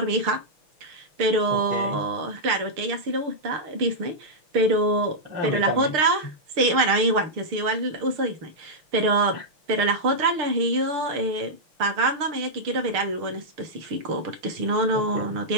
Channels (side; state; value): left; late; 6.6 ms